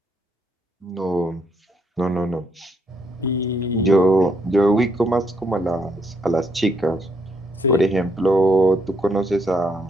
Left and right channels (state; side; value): normal; both; correlation 0.74